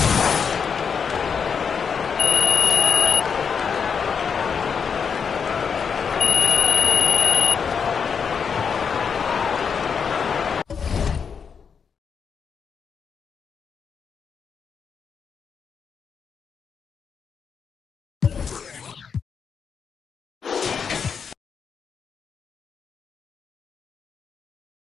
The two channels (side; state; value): right; quieter; 6.5 dB